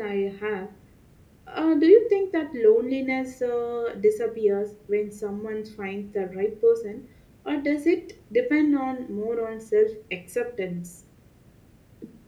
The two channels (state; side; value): identical; both; correlation 1.00